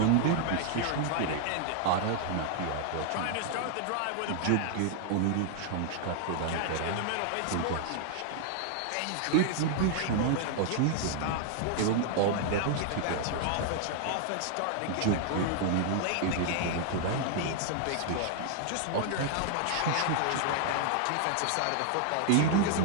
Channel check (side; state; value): both; different; correlation 0.00